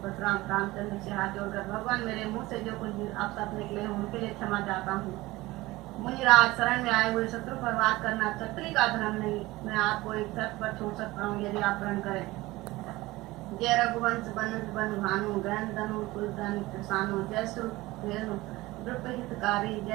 परशुराम, रामचंद्र से हाथ जोड़कर, भगवान, मेरे मुंह से जो कुछ अपशब्द निकले हों उनके लिए क्षमा चाहता हूँ। मुनिराज शरण में आए हुए शत्रु पर वार करना क्षत्रिय का धर्म नहीं। मैं आपको एक शर्त पर छोड़ सकता हूँ, यदि आप प्रण करें। जय रघुवंश बन भानु गहन धनु कुलधन किसानु, जय सुरेनु द्रुप हितकारी,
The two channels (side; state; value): left; quieter; 19.4 dB